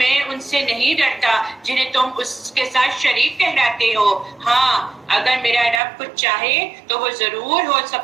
ان سے نہیں ڈرتا جنہیں تم اس کے ساتھ شریک ٹھہراتے ہو۔ ہاں اگر میرا رب کچھ چاہے تو وہ ضرور ہو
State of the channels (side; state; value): left; drops out; at 5.8 s